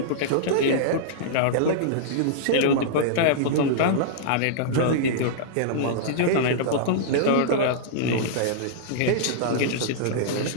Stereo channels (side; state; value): both; different; correlation -0.02